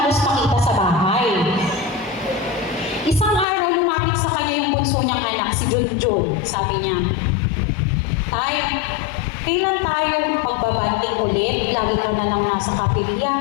makita sa bahay. Isang araw, lumapit sa kanya yung bunso niyang anak, si Junjun. Sabi niya, Tay, kailan tayo magbabanding ulit? Lagi ka na lang nasa kapilya.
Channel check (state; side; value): drops out; right; at 3.5 s